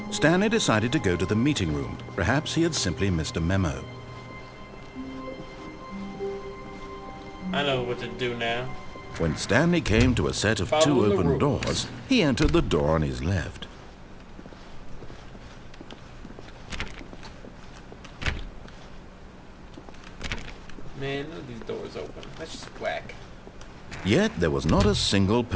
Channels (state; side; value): identical; both; correlation 1.00